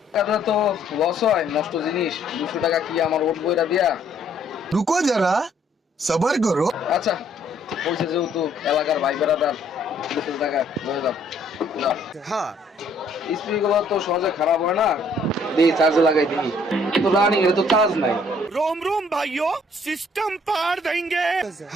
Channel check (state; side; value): normal; both; correlation 0.63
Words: এটা তো লস হয়, নষ্ট জিনিস 200 টাকা কি আমার ওট বইরা দিয়া। रुको जरा सबर करो। আচ্ছা বলছে যেহেতু এলাকার ভাই বেড়াদার, 200 টাকা হয়ে যাও। স্পিকগুলো তো সহজে খারাপ হয় না, দিই চার্জে লাগাই দিই, তো রানিং এর তো চার্জ নাই। रोम रोम भाइयों सिस्टम पार देंगे।